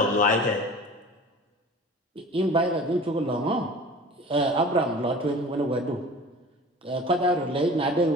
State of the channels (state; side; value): normal; both; correlation 0.41